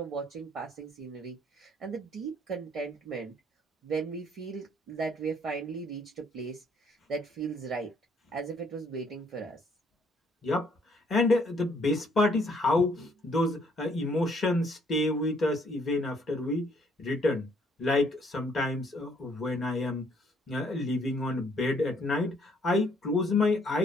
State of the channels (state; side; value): normal; both; correlation 0.65